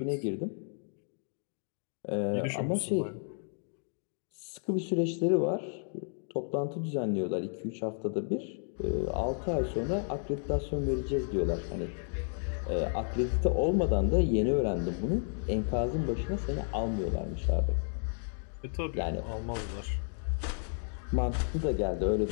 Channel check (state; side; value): silent; right; 56 dB below the other